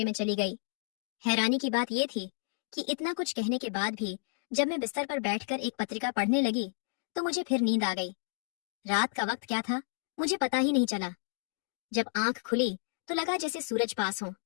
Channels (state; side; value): silent; right; digital silence